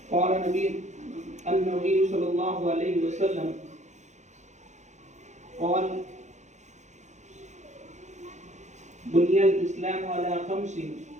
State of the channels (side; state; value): left; late; 0.34 ms